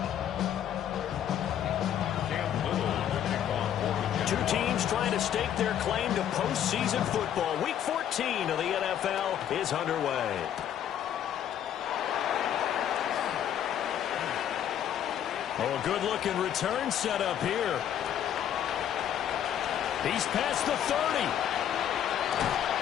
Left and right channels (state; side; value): quieter; right; 10.1 dB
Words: Two teams trying to stake their claim to postseason football. Week 14 of the NFL is underway. Oh, a good-looking return set up here. He's past the 30.